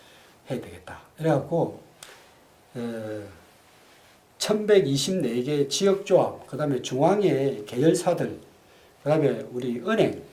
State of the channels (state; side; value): identical; both; correlation 1.00